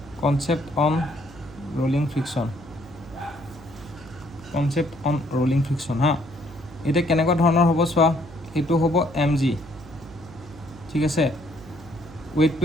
কনসেপ্ট অন ৰোলিং ফ্ৰিকশন হা এটা কেনেকুৱা ধৰণৰ হ'ব চোৱা এটো হ'ব mg ঠিক আছে weight to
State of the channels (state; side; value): noise; right; hum, 19 dB below the sound